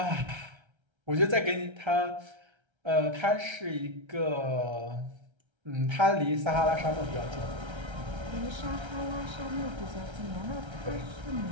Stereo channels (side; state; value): left; late; 1.3 ms